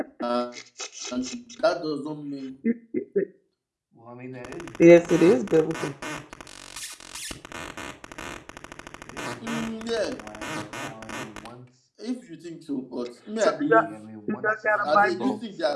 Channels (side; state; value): both; identical; correlation 1.00